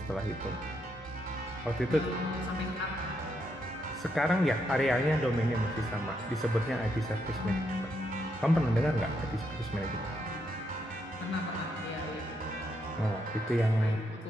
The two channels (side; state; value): both; normal; correlation 0.78